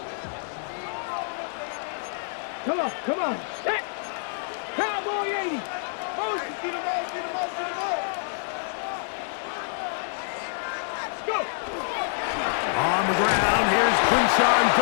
Come on, come on. Set. Cowboy 80. Motion. Get him out, get him out, get him out. Go. On the ground, here's Quinshawn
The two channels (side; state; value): right; silent; digital silence